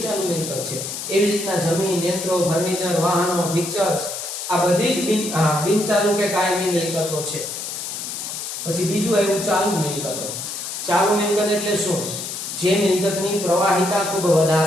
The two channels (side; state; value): left; noise; hiss, 6 dB below the sound